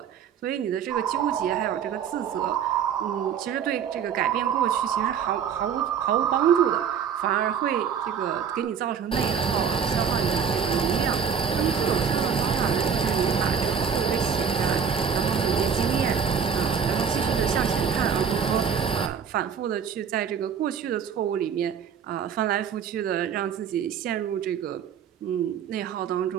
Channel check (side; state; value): left; quieter; 7.3 dB